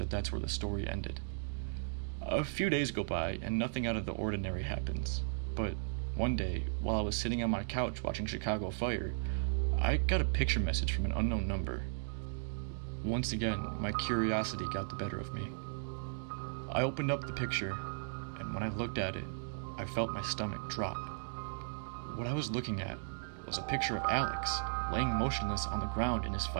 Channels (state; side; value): silent; left; digital silence